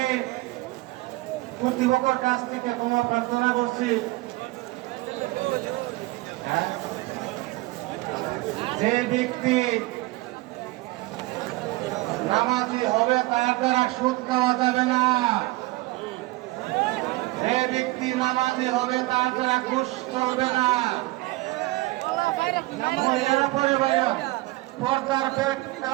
কর্তৃপক্ষের কাছ থেকে ক্ষমা প্রার্থনা করছি, যে ব্যক্তি নামাজি হবে তার দ্বারা সুদ খাওয়া যাবে না, যে ব্যক্তি নামাজি হবে তার দ্বারা ঘুষ চলবে না। মহিলারা পরে বাইরে পর্দার বেড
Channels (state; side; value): quieter; left; 20.9 dB